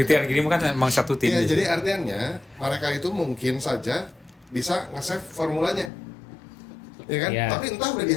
yang gini mah kan emang satu tim. Iya, jadi artinya mereka itu mungkin saja bisa nge-save formulanya. Ya kan? Iya. Tapi entah udah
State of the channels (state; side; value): drops out; right; at 5.9 s